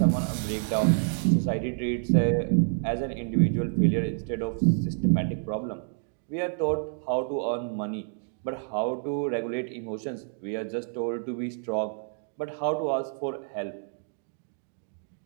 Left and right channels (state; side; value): silent; left; 59 dB below the other